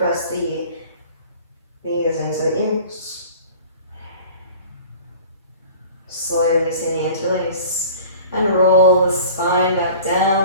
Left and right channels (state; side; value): inverted; both; correlation -0.43